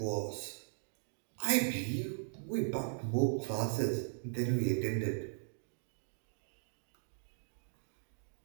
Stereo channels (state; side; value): silent; left; digital silence